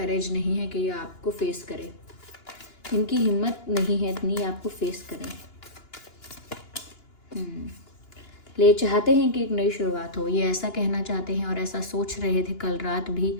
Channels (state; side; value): late; right; 2.9 ms